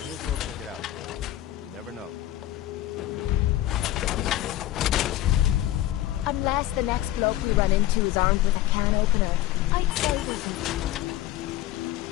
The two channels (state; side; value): quieter; right; 14.3 dB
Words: as well check it out. You never know. Unless the next bloke we run into is armed with a can opener, I'd say we can.